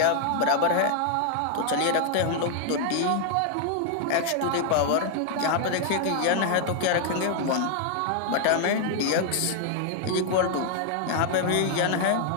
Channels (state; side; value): different; both; correlation 0.00